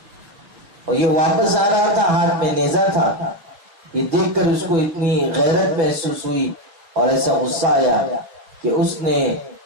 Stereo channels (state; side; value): late; left; 6.1 ms